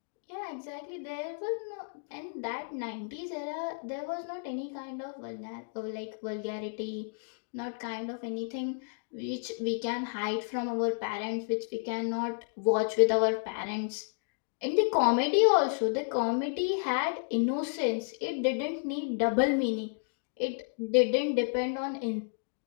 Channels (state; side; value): silent; right; digital silence